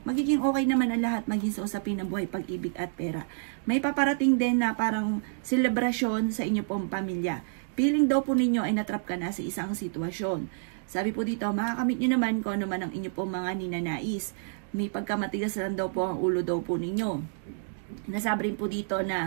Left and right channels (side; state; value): left; silent; digital silence